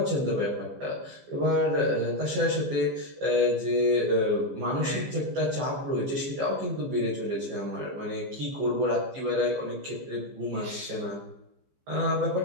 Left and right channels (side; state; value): left; late; 15 ms